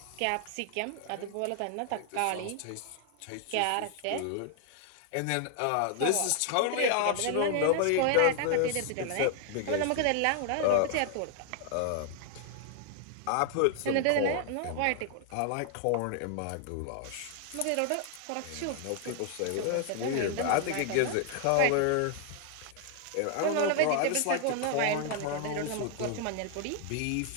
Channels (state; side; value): different; both; correlation 0.00